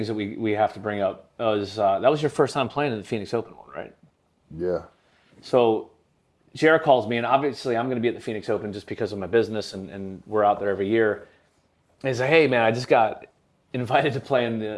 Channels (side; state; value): both; identical; correlation 1.00